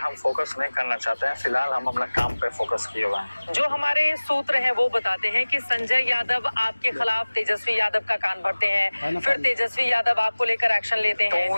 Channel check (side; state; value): both; inverted; correlation -1.00